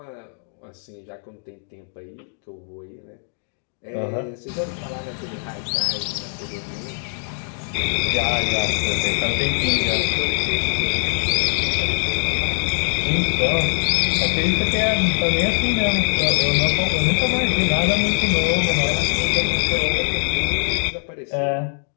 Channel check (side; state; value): right; silent; digital silence